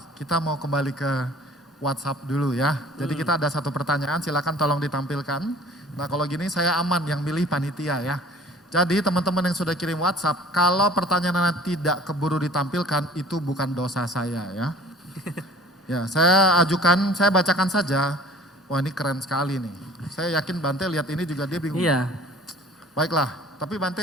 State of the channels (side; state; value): both; normal; correlation 0.48